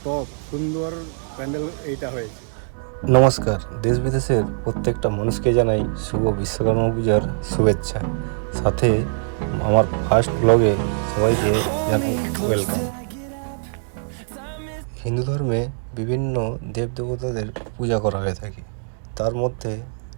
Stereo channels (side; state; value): left; silent; 64 dB below the other